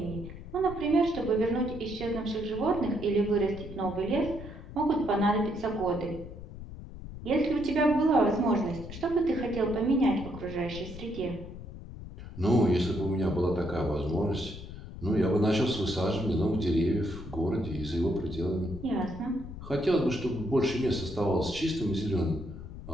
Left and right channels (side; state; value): left; noise; rumble, 12 dB below the sound